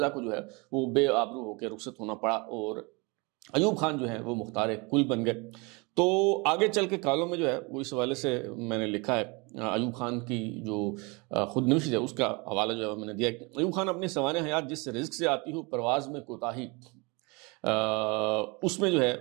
کو جو ہے وہ بے آبرو ہو کے رخصت ہونا پڑا اور ایوب خان جو ہے وہ مختار کل بن گئے۔ تو آگے چل کے کالوں میں جو ہے وہ اس حوالے سے میں نے لکھا ہے، ایوب خان کی جو خود نوشت ہے اس کا حوالہ جو ہے میں نے دیا ہے۔ ایوب خان اپنی سوانح حیات جس رزق سے آتی ہو پرواز میں کوتاہی، اس میں جو ہے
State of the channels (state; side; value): quieter; left; 28.2 dB